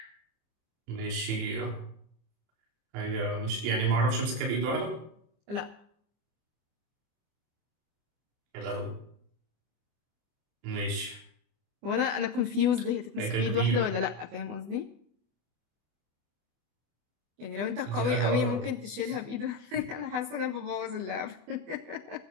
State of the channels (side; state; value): left; late; 24 ms